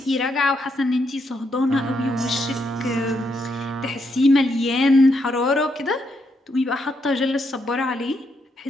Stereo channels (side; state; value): both; normal; correlation 0.78